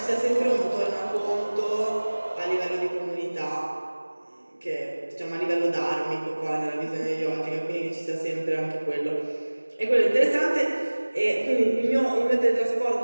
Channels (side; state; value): both; inverted; correlation -1.00